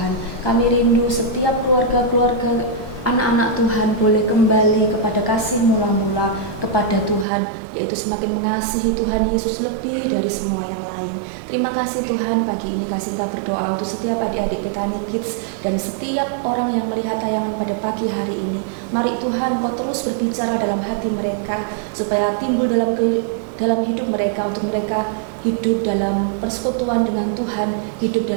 Kami rindu setiap keluarga-keluarga anak-anak Tuhan boleh kembali kepada kasih mula-mula kepada Tuhan, yaitu semakin mengasihi Tuhan Yesus lebih dari semua yang lain. Terima kasih Tuhan, pagi ini kasih Engkau berdoa untuk setiap adik-adik Bethany Kids dan setiap orang yang melihat tayangan pada pagi hari ini. Mari Tuhan, Kau terus berbicara dalam hati mereka supaya timbul dalam hidup mereka, untuk mereka hidup dalam persekutuan dengan Tuhan, hidup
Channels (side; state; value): left; drops out; at 7.2 s